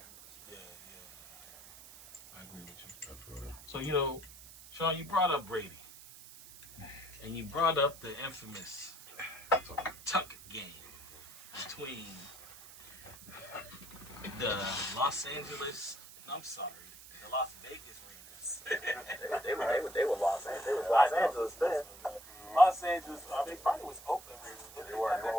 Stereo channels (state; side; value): noise; right; hiss, 17 dB below the sound